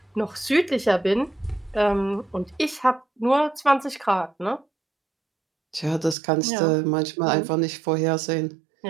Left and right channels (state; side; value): drops out; left; at 6.2 s